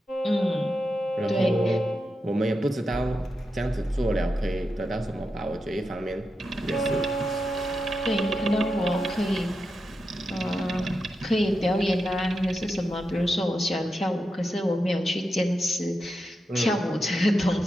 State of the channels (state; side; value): normal; both; correlation 0.88